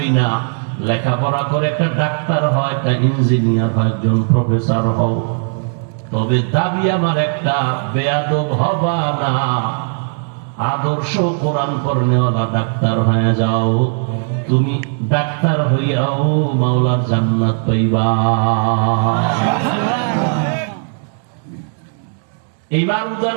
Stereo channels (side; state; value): left; silent; 58 dB below the other